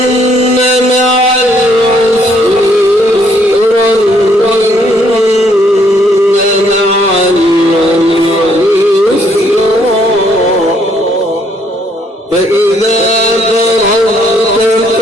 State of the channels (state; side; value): normal; both; correlation 0.68